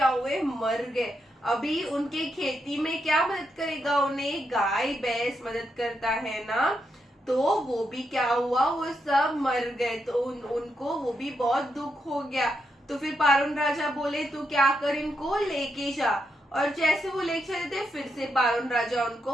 हुए, मर गए। अभी उनके खेती में क्या मदद करेगा उन्हें, गाय भैंस मदद करता है ना, तो वो भी क्या हुआ, वो सब मर गए। तो उनको वो भी बहुत दुख हो गया। तो फिर पारून राजा बोले, तू क्या कर, इनको लेके जा। और जैसे वो लेके चले थे, फिर से पारून राजा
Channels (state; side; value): normal; both; correlation 0.82